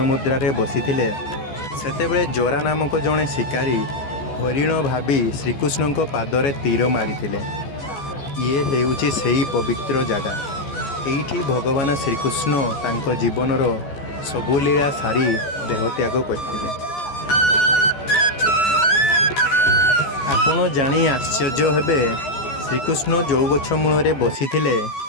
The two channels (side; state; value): right; late; 14 ms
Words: ମୁଦ୍ରାରେ ବସିଥିଲେ, ସେତେବେଳେ ଜରା ନାମକ ଜଣେ ଶିକାରୀ ହରିଣ ଭାବି ଶ୍ରୀକୃଷ୍ଣଙ୍କ ପାଦରେ ତୀର ମାରିଥିଲେ। ଇଏ ହେଉଛି ସେହି ପବିତ୍ର ଜାଗା। ଏଇଠି ଭଗବାନ ଶ୍ରୀକୃଷ୍ଣ ତାଙ୍କ ଜୀବନର ସବୁ ଲୀଳା ସାରି ଦେହତ୍ୟାଗ କରିଥିଲେ। ଆପଣ ଜାଣି ଆଶ୍ଚର୍ଯ୍ୟ ହେବେ, ଶ୍ରୀକୃଷ୍ଣ ଯେଉଁ ଗଛ ମୂଳରେ ବସିଥିଲେ